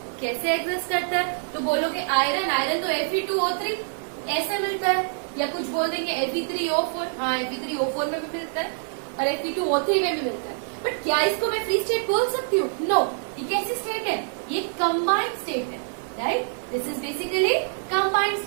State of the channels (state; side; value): silent; left; digital silence